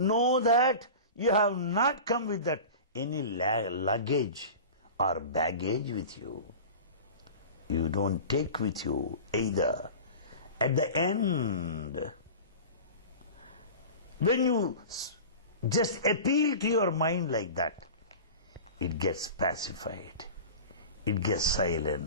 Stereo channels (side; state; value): both; inverted; correlation -0.34